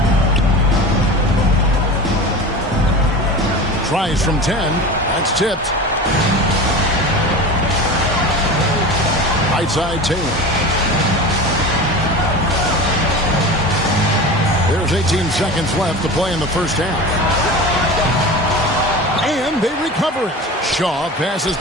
Tries from 10. That's tipped. Right side, Taylor. There's 18 seconds left to play in the first half. And they recover it. Shaw passes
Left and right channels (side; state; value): both; normal; correlation 0.32